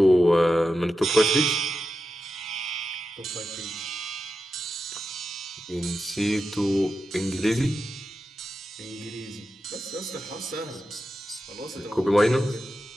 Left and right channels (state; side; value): normal; both; correlation 0.90